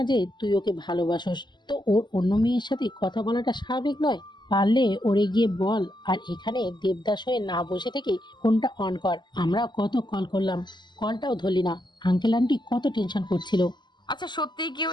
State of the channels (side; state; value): right; late; 0.21 ms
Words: যে তুই ওকে ভালোবাসোস, তো ওর অন্য মেয়ের সাথে কথা বলাটা স্বাভাবিক নয়? পারলে ওরে গিয়ে বল, আর এখানে দেবদাস হয়ে না বসে থেকে ফোনটা অন কর। আমরা কত কল করলাম, কলটাও ধরলি না। আঙ্কেল আন্টি কত টেনশন করছিল। আচ্ছা, সত্যি কি